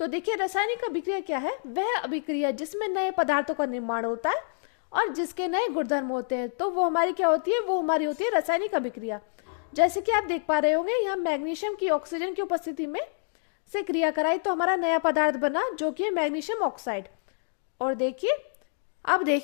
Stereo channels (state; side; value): silent; right; digital silence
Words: देखिए, रासायनिक अभिक्रिया क्या है? वह अभिक्रिया जिसमें नए पदार्थों का निर्माण होता है और जिसके नए गुणधर्म होते हैं, तो वो हमारी क्या होती है? वो हमारी होती है रासायनिक अभिक्रिया। जैसे कि आप देख पा रहे होंगे, यहाँ मैग्नीशियम की ऑक्सीजन की उपस्थिति में से क्रिया कराई तो हमारा नया पदार्थ बना जो कि है मैग्नीशियम ऑक्साइड। और देखिए, अब